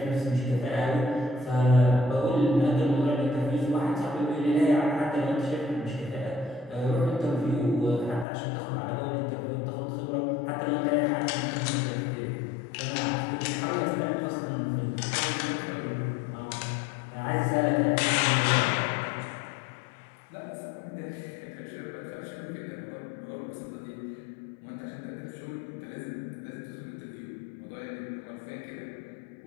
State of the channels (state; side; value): drops out; right; at 8.2 s